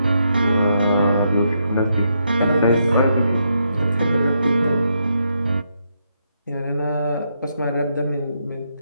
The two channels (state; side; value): inverted; both; correlation -0.79